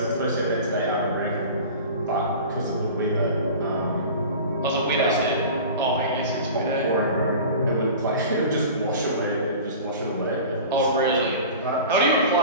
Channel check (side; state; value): both; inverted; correlation -0.37